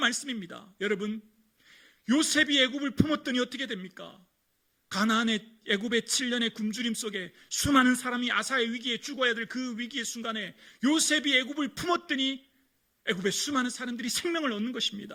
여러분, 요셉이 애굽을 품었더니 어떻게 됩니까? 가나안의 애굽의 7년의 굶주림 속에 수많은 사람이 아사의 위기에 죽어야 될 그 위기의 순간에 요셉이 애굽을 품었더니 애굽의 수많은 사람들이 생명을 얻는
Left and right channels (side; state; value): both; identical; correlation 1.00